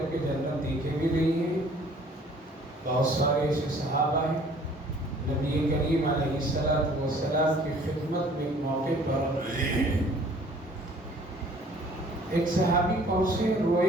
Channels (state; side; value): normal; both; correlation 0.54